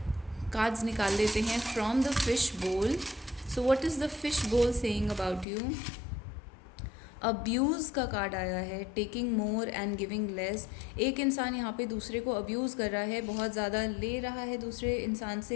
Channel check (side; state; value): right; drops out; at 5.5 s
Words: कार्ड्स निकाल लेते हैं फ्रॉम द फिश बोल। So what is the fish बोल सेइंग अबाउट यू? अब्यूज़ का कार्ड आया है, taking more and giving less. एक इंसान यहाँ पे दूसरे को अब्यूज़ कर रहा है, बहुत ज़्यादा ले रहा है दूसरे इंसान